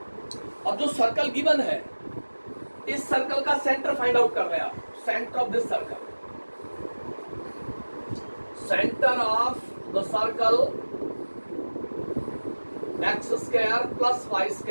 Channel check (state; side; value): inverted; both; correlation -1.00